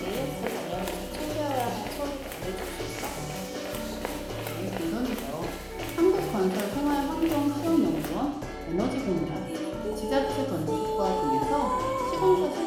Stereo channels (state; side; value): identical; both; correlation 1.00